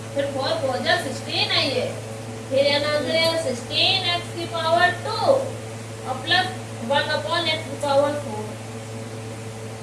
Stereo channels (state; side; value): identical; both; correlation 1.00